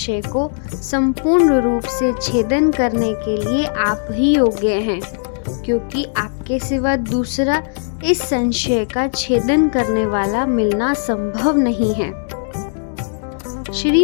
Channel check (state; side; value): silent; right; digital silence